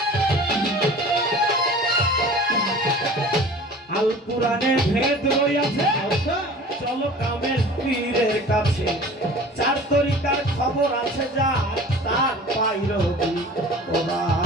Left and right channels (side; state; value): both; normal; correlation 0.43